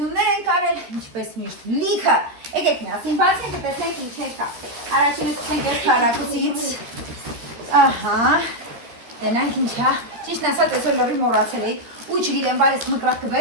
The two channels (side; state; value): left; late; 13 ms